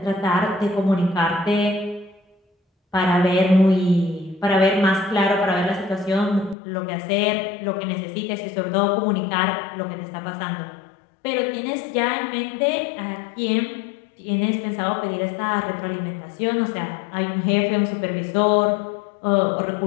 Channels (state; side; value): drops out; right; at 6.6 s